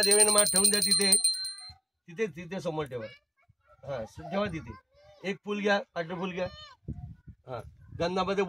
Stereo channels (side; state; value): both; identical; correlation 1.00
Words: देवेन मा ठेवून द्या. तिथे समोर ठेवा. हा ठेवा तिथे. एक फुल घ्या. फुल घ्या. हा गंधामध्ये